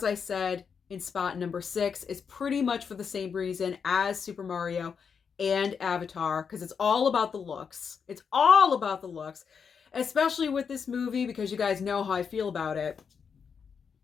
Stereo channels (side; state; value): right; quieter; 6.4 dB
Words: I said, in spot number 6, is pretty much for the same reason as Super Mario and Avatar, because it's all about the looks. It's all about the looks, especially with this movie, because you guys know how I feel about it.